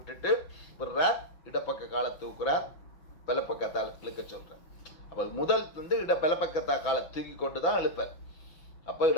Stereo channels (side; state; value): right; late; 6.0 ms